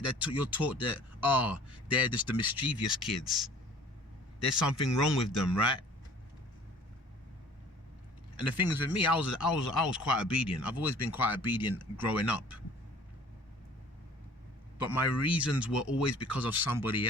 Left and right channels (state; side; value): normal; both; correlation 0.49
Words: you're taught that, they're just the mischievous kids. There's something wrong with them, right? And the thing is with me, I was quite obedient. I've always been quite obedient growing up. But my reasons were always because of somebody